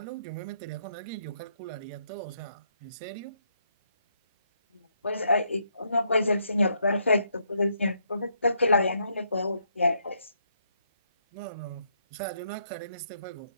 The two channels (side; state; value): both; inverted; correlation -0.74